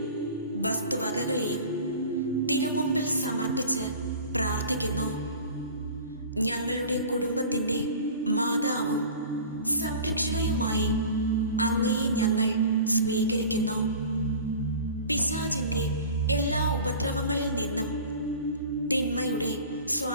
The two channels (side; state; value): both; inverted; correlation -0.40